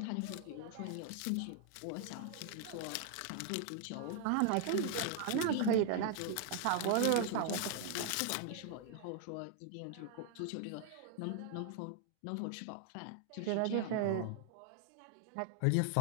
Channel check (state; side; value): different; both; correlation 0.00